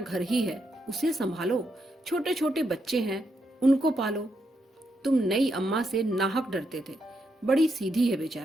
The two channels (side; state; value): both; normal; correlation 0.80